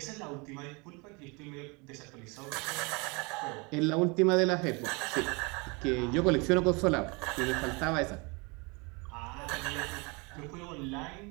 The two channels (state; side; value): quieter; left; 29.2 dB